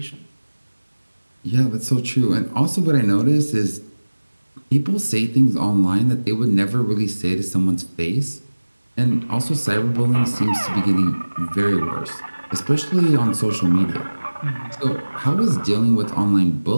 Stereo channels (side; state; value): both; inverted; correlation -1.00